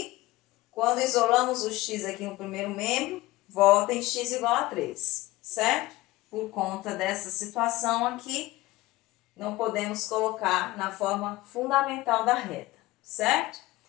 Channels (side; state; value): right; quieter; 18.8 dB